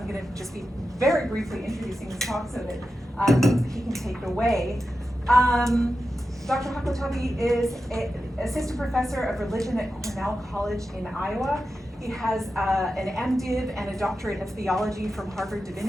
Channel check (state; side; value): normal; both; correlation 0.91